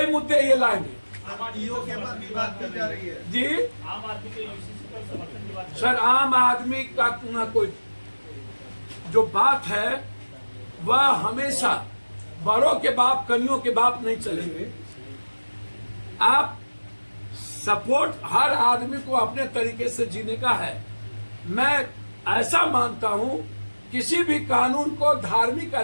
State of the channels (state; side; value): inverted; both; correlation -1.00